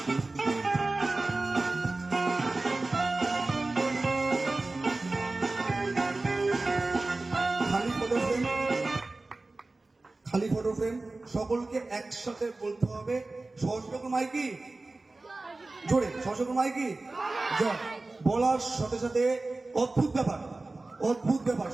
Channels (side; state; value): left; quieter; 3.2 dB